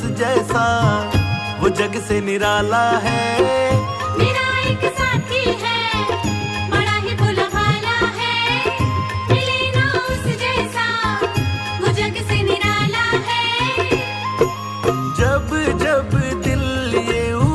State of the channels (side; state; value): both; identical; correlation 1.00